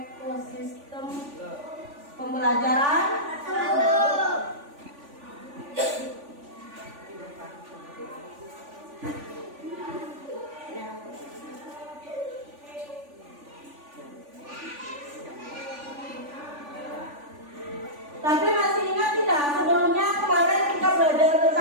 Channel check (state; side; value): late; left; 3.5 ms